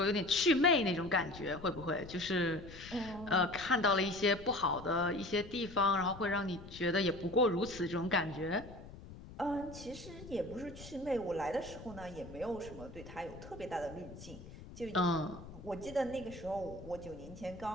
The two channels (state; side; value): noise; left; rumble, 15 dB below the sound